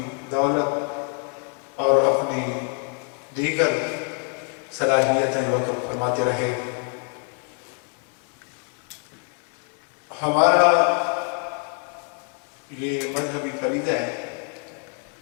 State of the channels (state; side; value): quieter; right; 36.4 dB